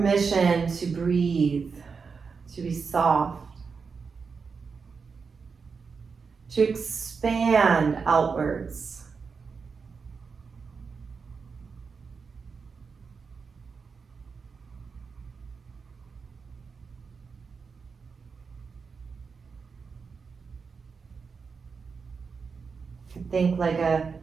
to breathe, to be soft, to expand outwards. Think like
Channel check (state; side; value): quieter; left; 5.3 dB